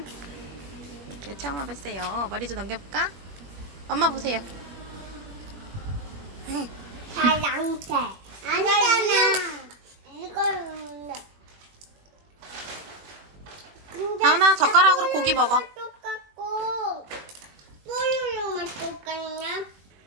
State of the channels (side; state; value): left; late; 21 ms